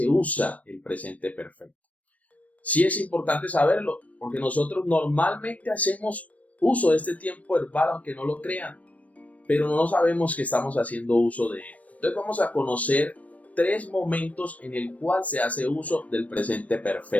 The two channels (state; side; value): late; right; 0.068 ms